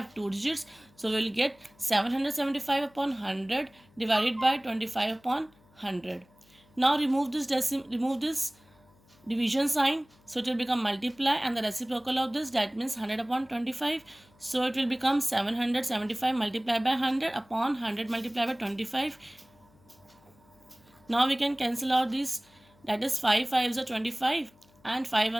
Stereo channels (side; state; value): left; noise; hum, 30 dB below the sound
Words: 2 digits. So we will get 775 upon 100 divided by 25 upon 100. Now remove this division sign, so it will become multiply and the reciprocal of this, that means 100 upon 25. So it will become 775 multiplied by 100 upon 100 multiplied by 25. Now we can cancel out this, that is 5 5s are 25 and 5